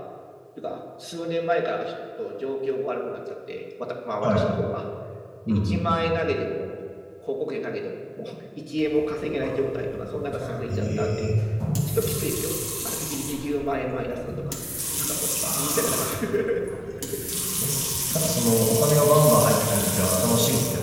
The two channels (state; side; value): identical; both; correlation 1.00